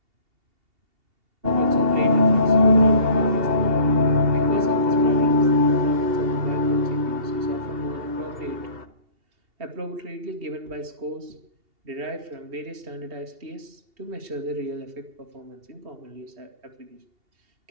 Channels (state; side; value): late; left; 2.8 ms